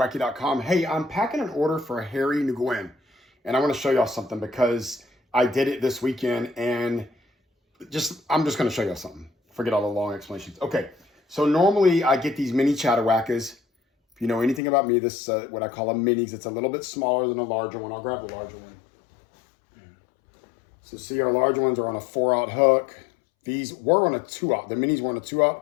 Hey, I'm packing an order for Harry Nguyen. And I want to show y'all something because I did it this weekend and I'm just going to show y'all something. Forget all the long explanations. Okay, so normally I get these mini chatterwackers. If you know anything about me, this what I call a minis. It's a little bit smaller than a larger one. I'll grab the larger one. So see, our larger ones are on a 4/0 hook. These were on a 2/0. The minis were on a 2/0.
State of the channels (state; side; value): drops out; right; at 14.6 s